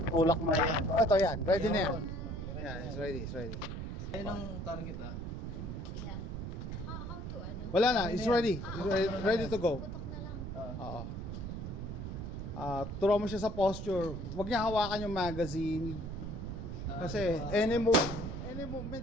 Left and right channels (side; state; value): right; noise; rumble, 6 dB below the sound